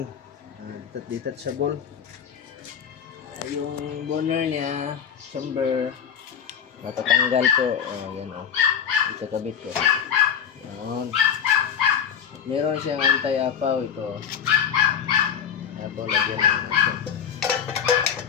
Detachable. Yung burner niya, chamber, natatanggal po. Yan o. Ito kabit ko. Yan. At meron siyang anti-apaw ito. Apaw, lagyan ng natin.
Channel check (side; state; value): right; quieter; 8.0 dB